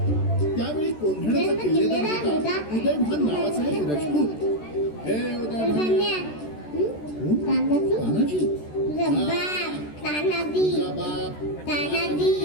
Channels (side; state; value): right; late; 13 ms